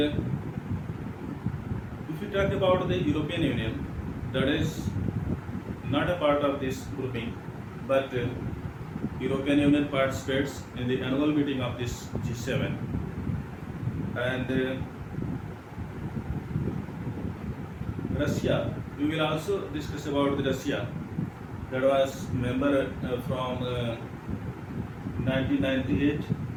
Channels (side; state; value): both; identical; correlation 1.00